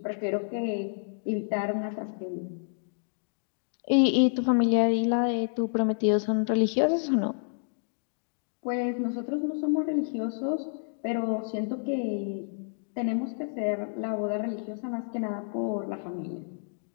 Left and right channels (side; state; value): right; silent; digital silence